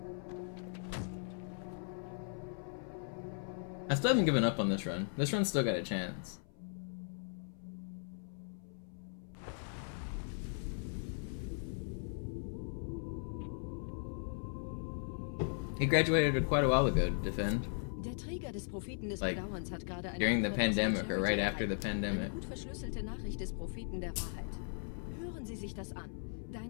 I still haven't given up on this run. This run's still got a chance. He graduated quite a while ago to defend. Der Träger des Propheten des Like, Bedauerns hat gerade eine during the Antwort pandemic aus or der right Charity after the erhalten. pandemic. Eine gut verschlüsselte Nachricht des Propheten der Wahrheit. Hören Sie sich das an.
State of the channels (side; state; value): right; silent; 52 dB below the other